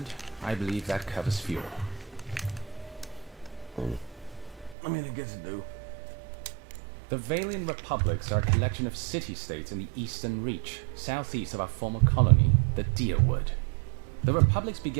I believe that covers Fjord. I mean, I guess it do. The Valian Republics are a collection of city-states in the Eastern Reach, southeast of our former colony, the Deerwood. The Republics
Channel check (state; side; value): drops out; left; at 4.8 s